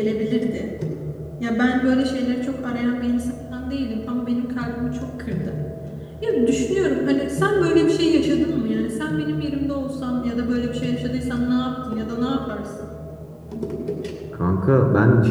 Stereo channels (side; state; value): both; identical; correlation 1.00